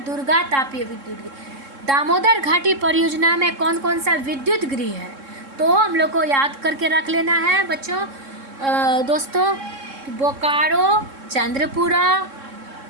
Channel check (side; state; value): left; late; 3.7 ms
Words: दुर्गा तापीय विद्युत गृह। दामोदर घाटी परियोजना में कौन कौन सा विद्युत गृह है, तो हम लोग को याद करके रख लेना है बच्चों, दोस्तों, बोकारो, चंद्रपुरा